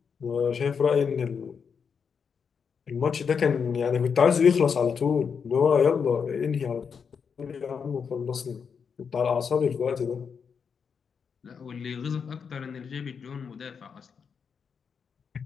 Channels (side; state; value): right; quieter; 6.3 dB